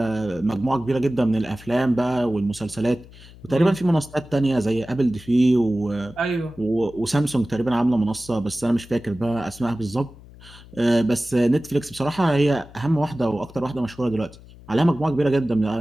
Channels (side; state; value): left; noise; hum, 21 dB below the sound